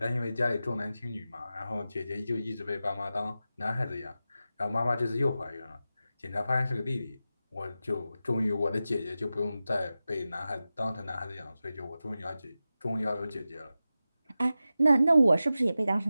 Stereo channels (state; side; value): inverted; both; correlation -0.93